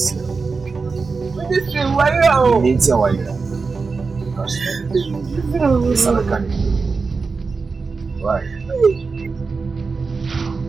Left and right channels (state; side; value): quieter; left; 4.5 dB